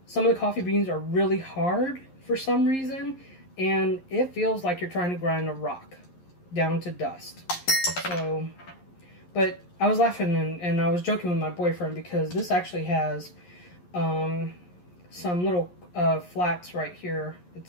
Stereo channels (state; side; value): late; right; 11 ms